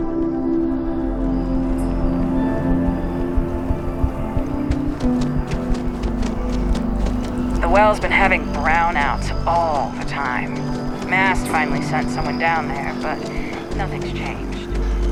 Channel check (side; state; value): both; identical; correlation 1.00